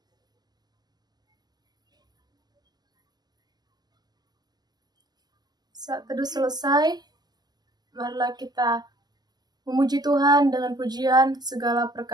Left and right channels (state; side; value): late; left; 0.20 ms